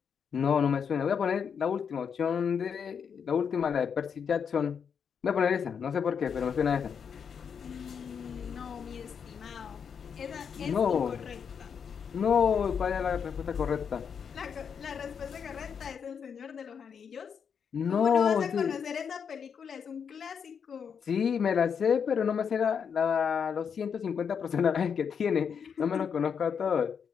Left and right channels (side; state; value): right; quieter; 6.9 dB